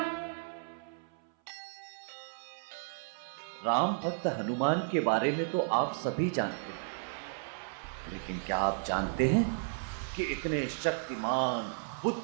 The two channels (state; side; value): silent; left; 55 dB below the other